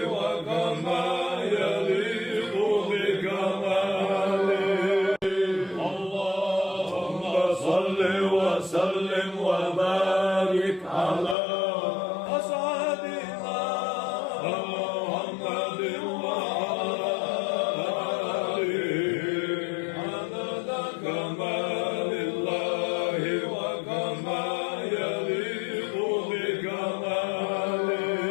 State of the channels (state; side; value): drops out; right; at 11.4 s